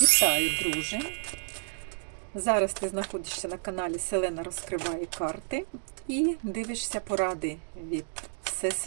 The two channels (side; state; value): left; silent; digital silence